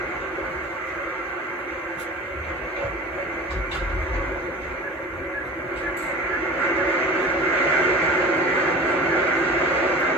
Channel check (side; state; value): both; normal; correlation 0.38